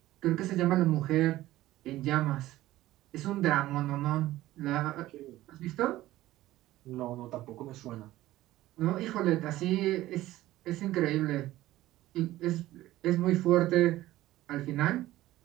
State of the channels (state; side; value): quieter; left; 15.8 dB